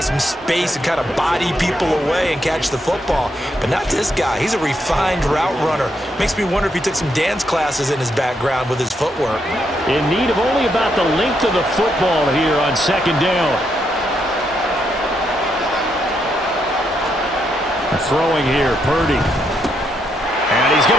space and kind of body people away and catch the football. But not this guy. He's a refined route runner. Makes me wonder if he took some dance classes in his background with his footwork. In need of only about the length of the football here on 2nd down. Throwing here, Purdy. And he's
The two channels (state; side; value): normal; both; correlation 0.79